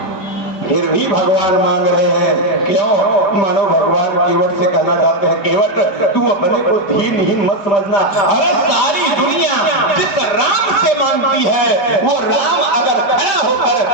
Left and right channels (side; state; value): right; late; 5.0 ms